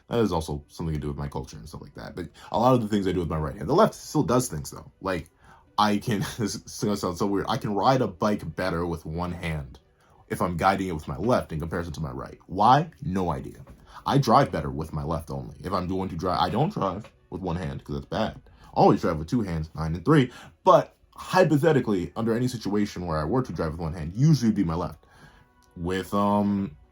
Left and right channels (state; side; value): identical; both; correlation 1.00